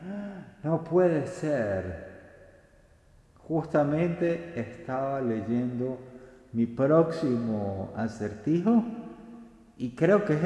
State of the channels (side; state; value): both; identical; correlation 1.00